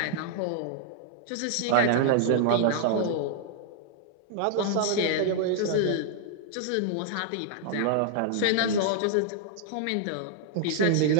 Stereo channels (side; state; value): both; different; correlation -0.01